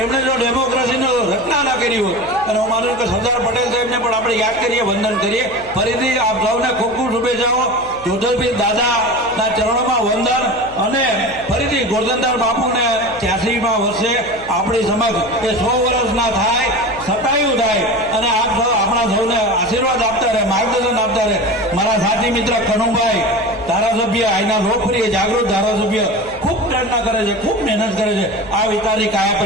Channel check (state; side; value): noise; left; hum, 20 dB below the sound